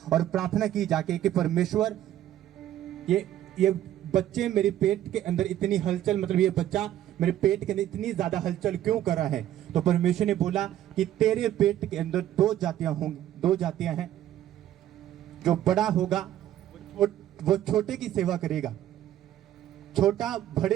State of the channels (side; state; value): left; quieter; 12.3 dB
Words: और प्रार्थना की जाके कि परमेश्वर ये बच्चे मेरे पेट के अंदर इतनी हलचल, मतलब ये बच्चा मेरे पेट के अंदर इतनी ज्यादा हलचल क्यों कर रहा है। तो परमेश्वर ने बोला कि तेरे पेट के अंदर दो जातियां हैं, जो बड़ा होगा वो छोटे की सेवा करेगा, छोटा